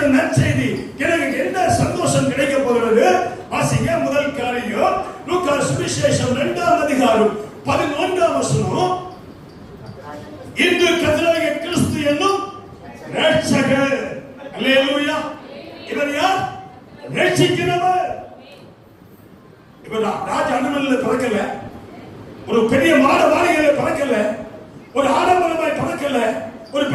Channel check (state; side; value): identical; both; correlation 1.00